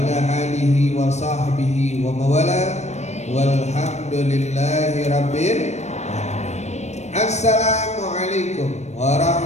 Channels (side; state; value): right; late; 0.32 ms